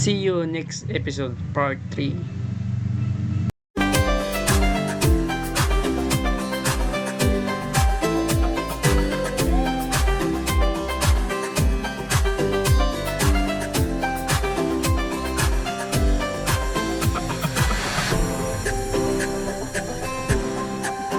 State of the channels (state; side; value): identical; both; correlation 1.00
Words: you next episode, part 3.